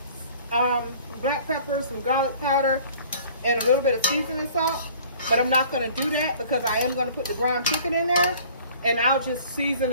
black pepper, some garlic powder, and a little bit of seasoning salt. But I'm not going to do that because I am going to put the ground chicken in there, and I'll just season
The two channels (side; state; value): both; inverted; correlation -0.50